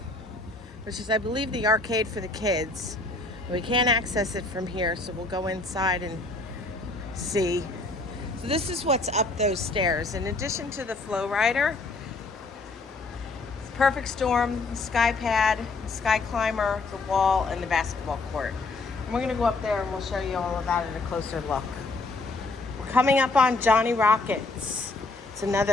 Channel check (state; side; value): quieter; right; 3.4 dB